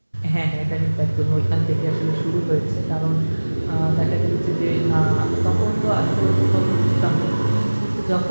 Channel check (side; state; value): both; inverted; correlation -1.00